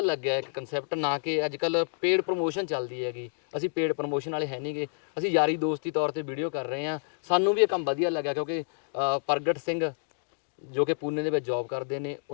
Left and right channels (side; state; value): right; silent; digital silence